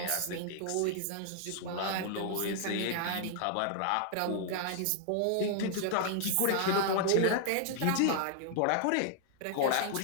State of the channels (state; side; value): different; both; correlation -0.01